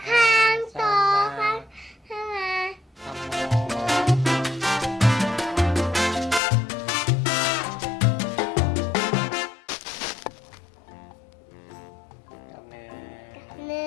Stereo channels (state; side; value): drops out; right; at 6.4 s